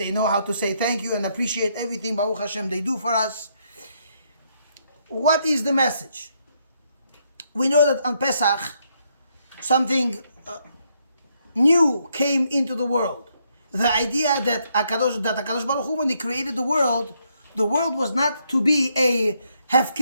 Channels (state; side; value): inverted; both; correlation -0.74